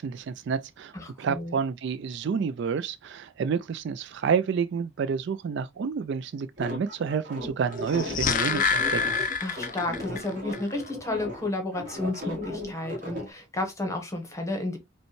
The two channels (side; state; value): both; normal; correlation 0.20